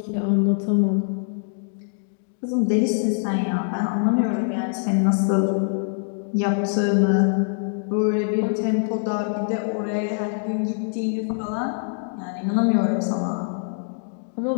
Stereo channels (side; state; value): right; silent; digital silence